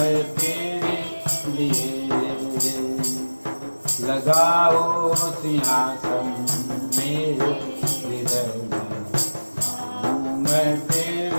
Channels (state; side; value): inverted; both; correlation -1.00